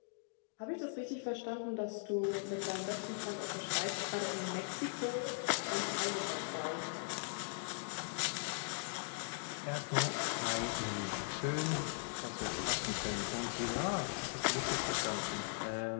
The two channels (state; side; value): silent; right; digital silence